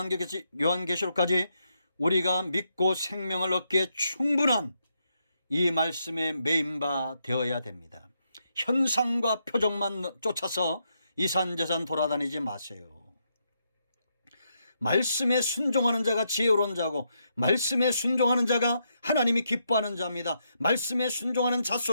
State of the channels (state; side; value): inverted; both; correlation -0.80